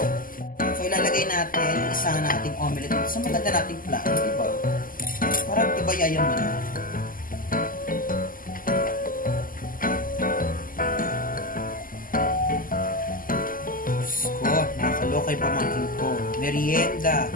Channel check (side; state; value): right; late; 0.41 ms